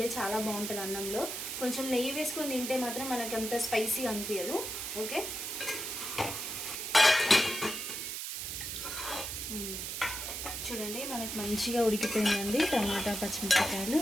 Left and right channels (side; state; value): right; noise; hiss, 5 dB below the sound